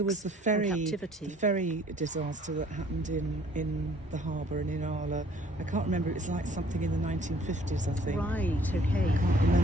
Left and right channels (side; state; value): both; normal; correlation 0.58